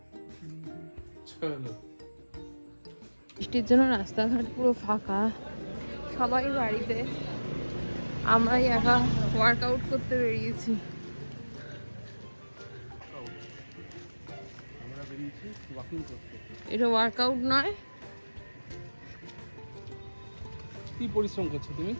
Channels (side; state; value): both; inverted; correlation -1.00